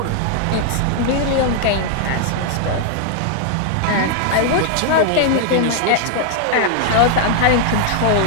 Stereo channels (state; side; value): different; both; correlation 0.00